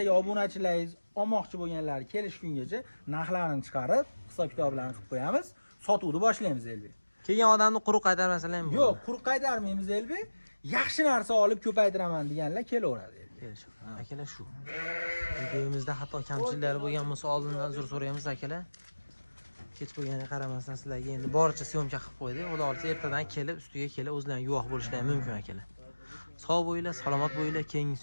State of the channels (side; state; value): both; inverted; correlation -1.00